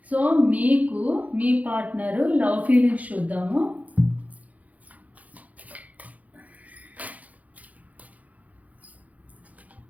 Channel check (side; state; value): left; late; 0.074 ms